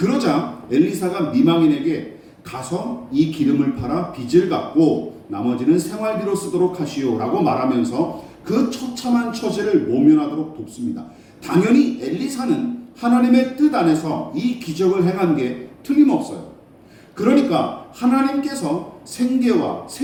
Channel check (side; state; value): both; identical; correlation 1.00